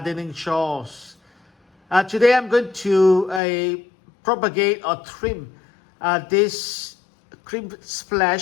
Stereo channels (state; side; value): drops out; right; at 3.4 s